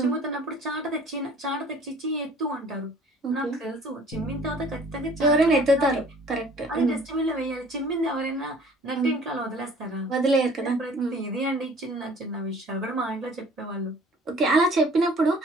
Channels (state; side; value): normal; both; correlation 0.51